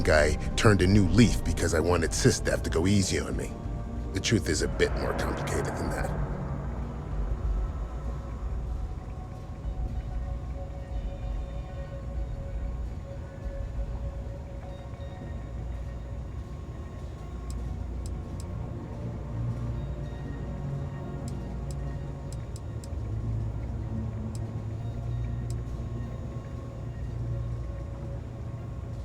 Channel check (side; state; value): both; identical; correlation 1.00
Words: I turned a new leaf because I wanted SysDev to go easy on me. The truth is a bit more complicated than that.